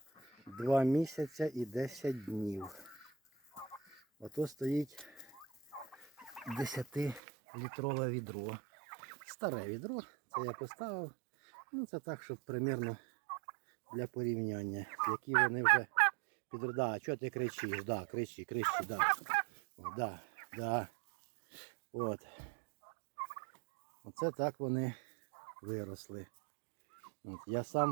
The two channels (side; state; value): left; drops out; at 7.2 s